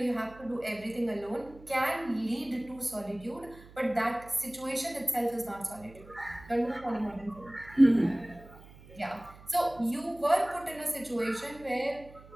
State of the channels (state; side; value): noise; right; hum, 21 dB below the sound